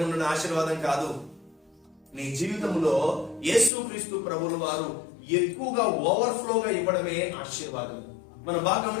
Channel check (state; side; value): drops out; right; at 3.7 s